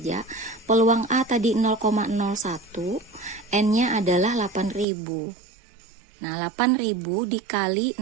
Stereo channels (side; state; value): left; drops out; at 4.9 s